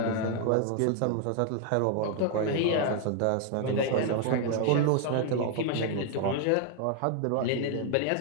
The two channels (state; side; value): different; both; correlation 0.00